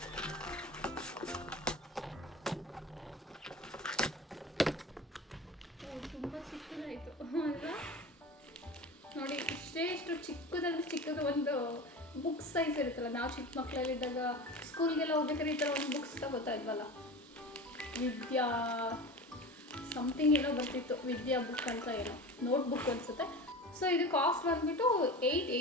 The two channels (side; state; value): both; normal; correlation 0.32